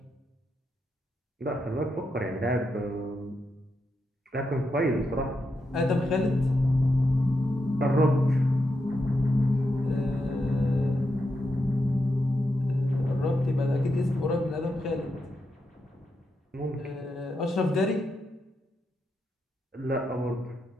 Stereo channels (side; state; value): both; normal; correlation 0.85